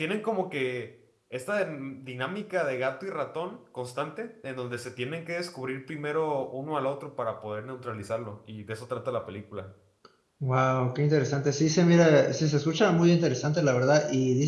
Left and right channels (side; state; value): both; identical; correlation 1.00